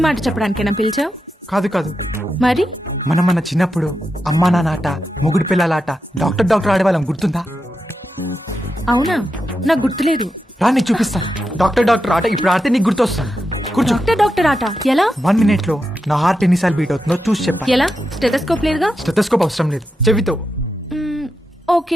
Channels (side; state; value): both; normal; correlation 0.87